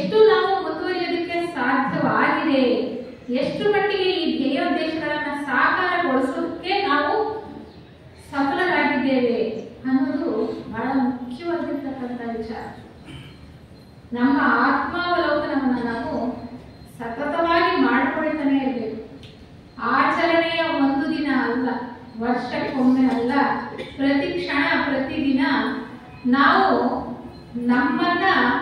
ನಾವು ಮುಂದುವರಿಯೋದಕ್ಕೆ ಸಾಧ್ಯವಾಗಿದೆ, ಎಷ್ಟು ಮಟ್ಟಿಗೆ ಈ ಧ್ಯೇಯೋದ್ದೇಶಗಳನ್ನ ಸಾಕಾರಗೊಳಿಸೋದಕ್ಕೆ ನಾವು ಸಫಲರಾಗಿದ್ದೇವೆ ಅನ್ನೋದು ಬಹಳ ಮುಖ್ಯವಾಗಿರ್ತಕ್ಕಂಥ ವಿಚಾರ. ನಮ್ಮ ಆತ್ಮಾವಲೋಕನವನ್ನು ನಾವು ಸತತವಾಗಿ ಮಾಡಿಕೊಳ್ತಾನೆ ಇರಬೇಕು. ಆಚರಣೆಯ ಒಂದು ದಿನ ಅಲ್ಲ, ವರ್ಷಕ್ಕೊಮ್ಮೆ ಅಲ್ಲ, ಪ್ರತಿ ಕ್ಷಣ ಪ್ರತಿದಿನ ನಾವು ನಮ್ಮನ್ನ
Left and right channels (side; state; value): both; identical; correlation 1.00